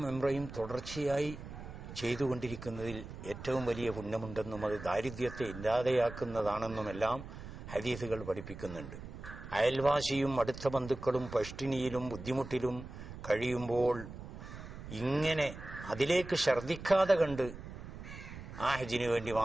ഉംറയും തുടർച്ചയായി ചെയ്തുകൊണ്ടിരിക്കുന്നതിൽ ഏറ്റവും വലിയ പുണ്യമുണ്ടെന്നും അത് ദാരിദ്ര്യത്തെ ഇല്ലാതെയാക്കുന്നതാണെന്നുമെല്ലാം ഹദീസുകൾ പഠിപ്പിക്കുന്നുണ്ട്. അയൽവാസിയും അടുത്ത ബന്ധുക്കളും പഷ്ടിനിയിലും ബുദ്ധിമുട്ടിലും കഴിയുമ്പോൾ ഇങ്ങനെ അതിലേക്ക് ഛർദ്ദിക്കാതെ കണ്ട് ആ ഹജ്ജിന് വേണ്ടി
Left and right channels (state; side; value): noise; right; rumble, 12 dB below the sound